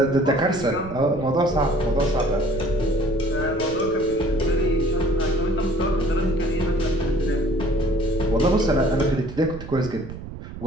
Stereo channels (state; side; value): noise; right; rumble, 11 dB below the sound